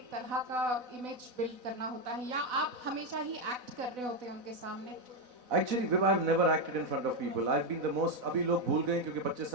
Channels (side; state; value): left; late; 4.0 ms